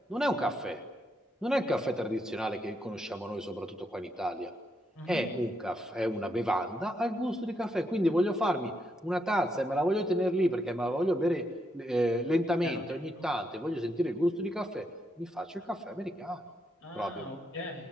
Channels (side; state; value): both; normal; correlation 0.79